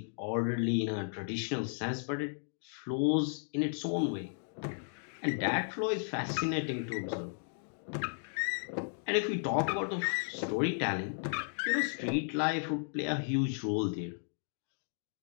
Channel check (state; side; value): silent; right; digital silence